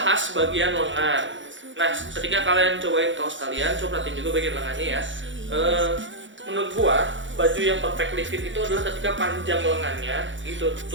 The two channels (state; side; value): late; left; 0.55 ms